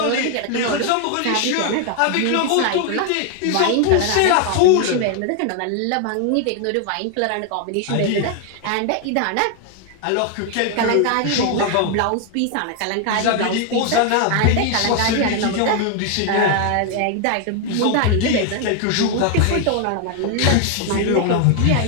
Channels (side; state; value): both; different; correlation 0.01